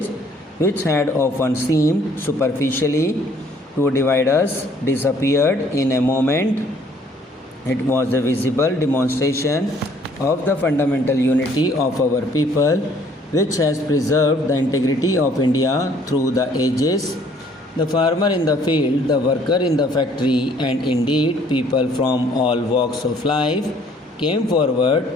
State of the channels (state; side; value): normal; both; correlation 0.60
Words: which had often seemed superficially to divide us, disappeared in a moment. It was a visible demonstration of the fundamental unity of our people, which has preserved the integrity of India through the ages. The farmer in the field, the worker in the factory, and indeed people from all walks of life came forward